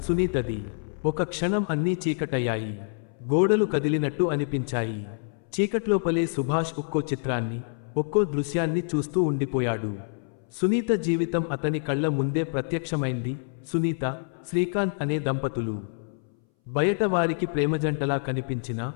సునీతది. ఒక క్షణం అన్నీ చీకటయ్యాయి. గోడలు కదిలినట్టు అనిపించాయి. చీకట్లోపలే సుభాష్ ఒక్కో చిత్రాన్ని, ఒక్కో దృశ్యాన్ని చూస్తూ ఉండిపోయాడు. సునీత జీవితం అతని కళ్ళ ముందే ప్రత్యక్షమైంది. సునీత, శ్రీకాంత్ అనే దంపతులు. బయట వారికి ప్రేమజంటలా కనిపించినా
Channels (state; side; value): silent; right; 60 dB below the other